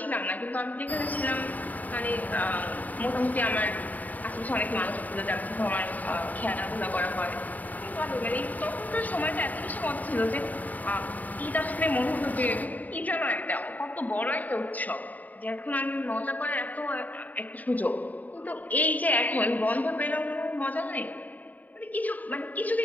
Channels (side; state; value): right; late; 0.078 ms